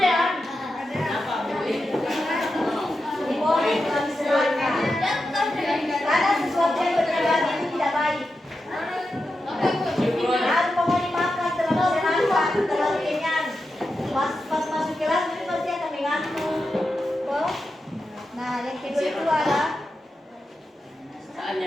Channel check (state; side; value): normal; both; correlation 0.89